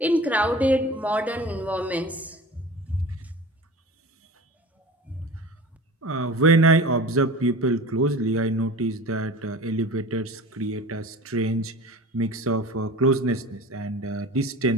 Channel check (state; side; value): normal; both; correlation 0.37